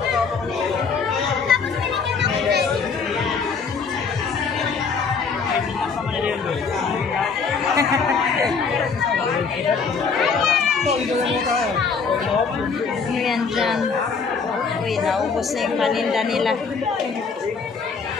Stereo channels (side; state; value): right; quieter; 5.3 dB